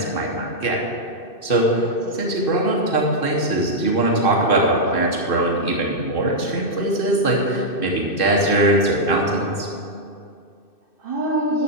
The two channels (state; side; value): late; right; 2.6 ms